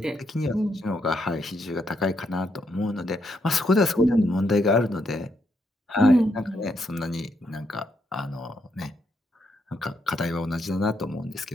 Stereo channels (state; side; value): normal; both; correlation 0.78